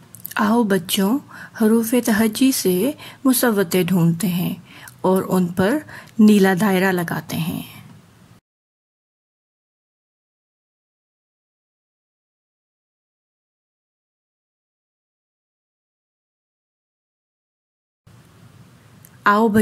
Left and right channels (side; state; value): both; identical; correlation 1.00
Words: آؤ بچوں، حروف تہجی سے مصوتے ڈھونڈتے ہیں اور ان پر نیلا دائرہ لگاتے ہیں. آؤ